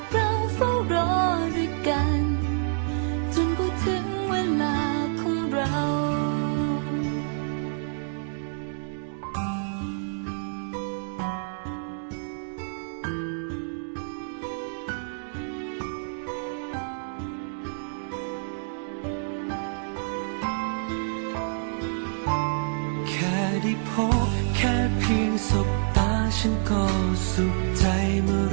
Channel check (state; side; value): silent; left; 59 dB below the other